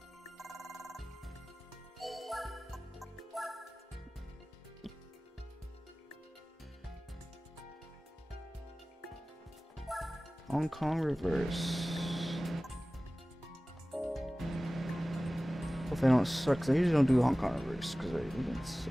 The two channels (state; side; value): normal; both; correlation 0.97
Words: Hong Kong reverse. Hope they don't suck, because I usually don't do Hong Kong reverse, because I